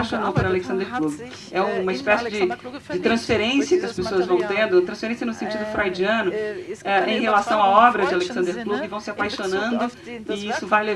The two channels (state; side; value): identical; both; correlation 1.00